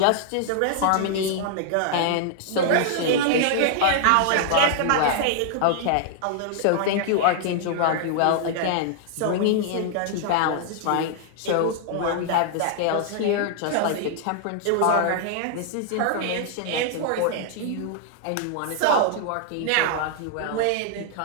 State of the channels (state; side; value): different; both; correlation -0.01